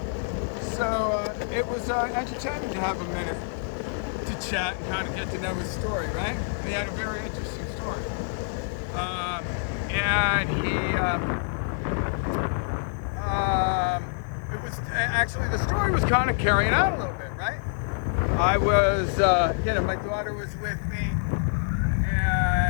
So it was entertaining to have a minute to chat and kind of get to know his story, right? And he had a very interesting story. And it was actually, the story was kind of carrying out a little bit, right? I was, my daughter was with me,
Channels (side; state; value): right; silent; 61 dB below the other